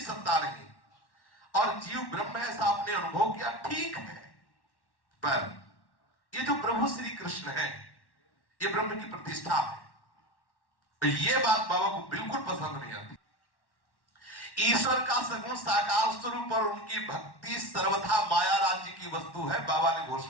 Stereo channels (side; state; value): right; late; 1.1 ms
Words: सत्ता नहीं और जीव ब्रह्म है, ऐसा आपने अनुभव किया, ठीक है। पर ये जो प्रभु श्री कृष्ण है, ये ब्रह्म की प्रतिष्ठा है, तो ये बात बाबा को बिल्कुल पसंद नहीं आती। ईश्वर का सगुण साकार स्वरूप और उनकी भक्ति सर्वथा माया राज्य की वस्तु है। बाबा ने